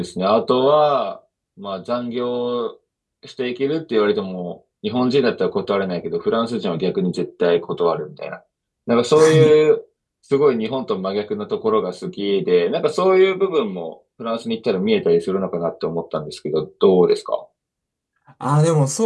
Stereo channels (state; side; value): identical; both; correlation 1.00